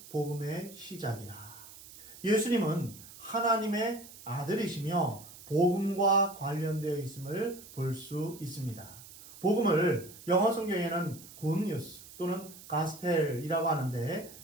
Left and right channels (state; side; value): noise; right; hiss, 18 dB below the sound